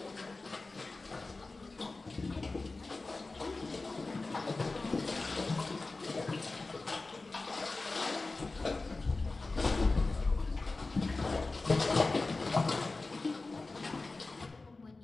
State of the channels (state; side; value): quieter; right; 3.5 dB